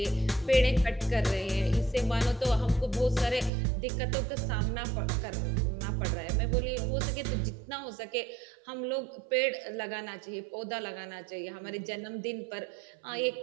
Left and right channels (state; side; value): drops out; left; at 3.5 s